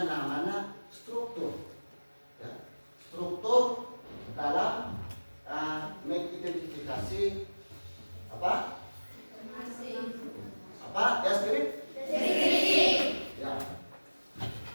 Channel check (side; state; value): both; inverted; correlation -1.00